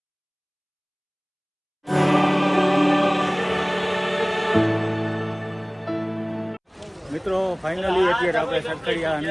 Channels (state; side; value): identical; both; correlation 1.00